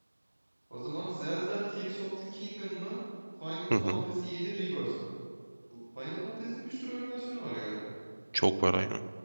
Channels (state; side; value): inverted; both; correlation -1.00